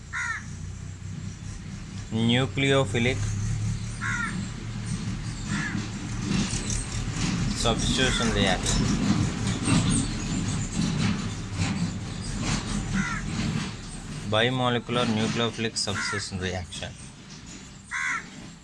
nucleophilic substitution reaction. Bimolecular nucleophilic substitution reaction.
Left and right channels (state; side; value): identical; both; correlation 1.00